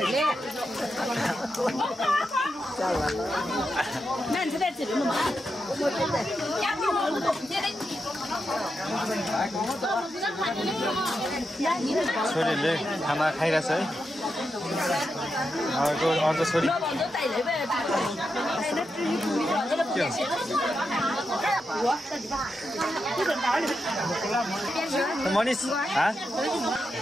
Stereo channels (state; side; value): normal; both; correlation 0.86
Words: छोरीले खाना खाइरहेछ है अर्को छोरी मनिष